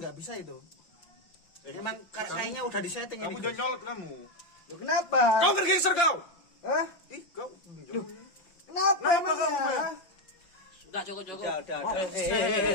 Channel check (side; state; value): right; late; 5.8 ms